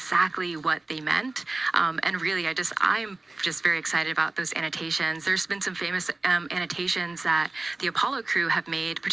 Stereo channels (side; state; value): left; quieter; 3.1 dB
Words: what they meant. And really, I'm just very excited about those annotations. There's been some famous annotations that the Apollo crew have made,